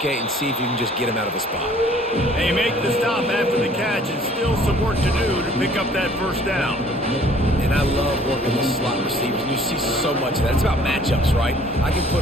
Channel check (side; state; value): both; normal; correlation 0.55